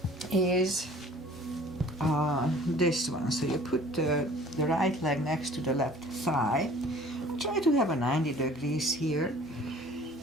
is this one. So you put the right leg next to the left thigh. Try to have a 90 degrees here.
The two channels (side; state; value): both; normal; correlation 0.50